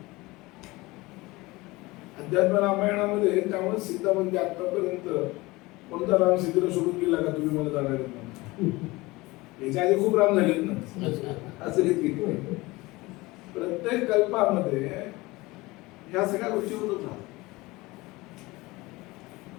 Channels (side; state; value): right; quieter; 21.6 dB